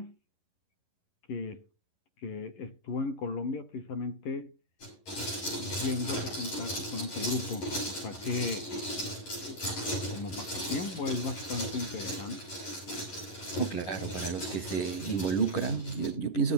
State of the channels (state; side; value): late; right; 11 ms